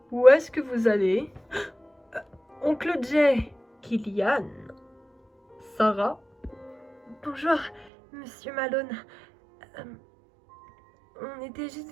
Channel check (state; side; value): drops out; left; at 7.9 s